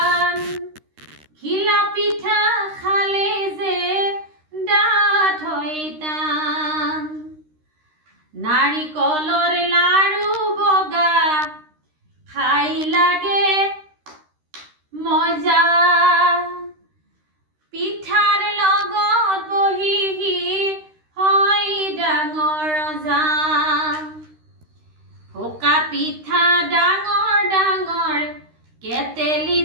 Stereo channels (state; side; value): late; left; 13 ms